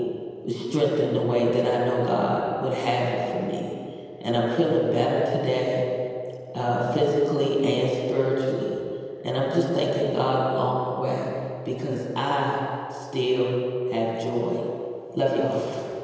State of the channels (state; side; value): identical; both; correlation 1.00